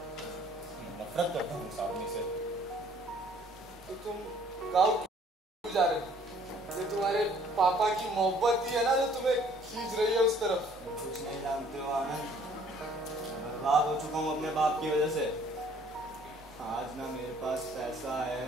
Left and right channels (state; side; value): normal; both; correlation 0.58